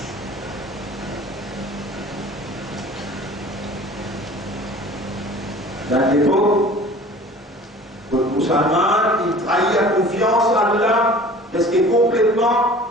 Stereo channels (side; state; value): both; normal; correlation 0.45